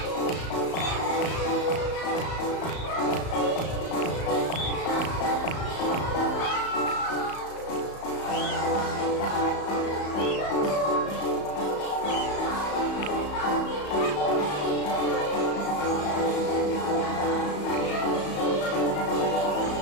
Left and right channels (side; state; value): right; late; 34 ms